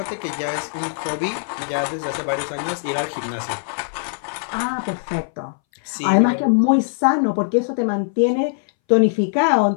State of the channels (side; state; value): right; silent; 63 dB below the other